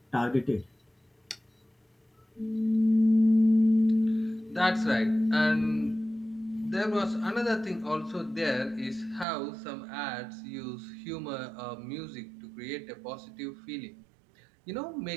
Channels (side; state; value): left; drops out; at 9.2 s